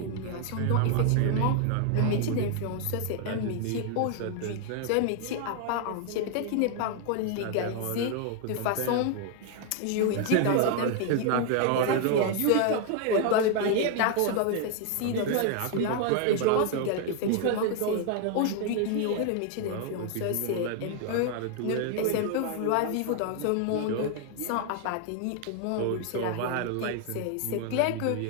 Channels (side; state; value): both; different; correlation 0.00